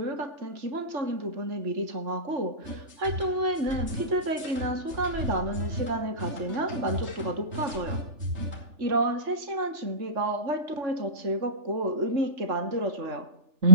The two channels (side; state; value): left; late; 3.4 ms